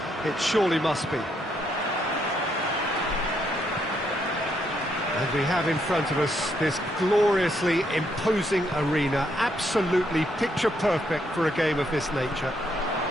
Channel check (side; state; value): both; normal; correlation 0.75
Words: It surely must be. And we have in front of us this gloriously imposing arena, absolutely picture perfect for a game of this nature.